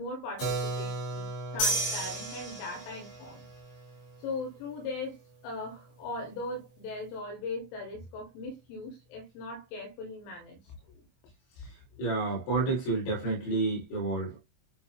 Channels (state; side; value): late; right; 23 ms